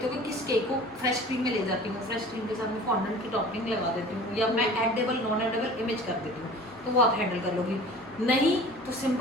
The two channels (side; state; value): both; normal; correlation 0.43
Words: हो कि किस केक को फ्रेश क्रीम में ले जाती हूँ, फ्रेश क्रीम के साथ में फॉन्डेंट की टॉपिंग लगा देती हूँ या मैं एडेबल नॉन एडेबल इमेज कर देती हूँ, तो वो आप हैंडल कर लोगी। नहीं तो